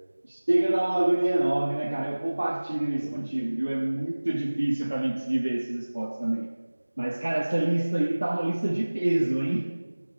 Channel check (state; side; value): inverted; both; correlation -1.00